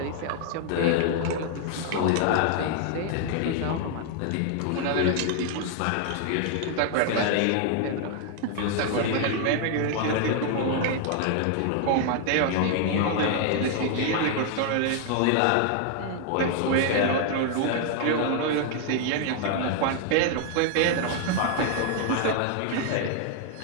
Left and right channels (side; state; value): both; different; correlation 0.00